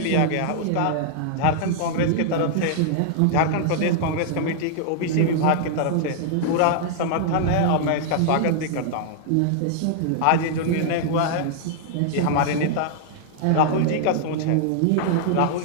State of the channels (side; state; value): both; different; correlation -0.01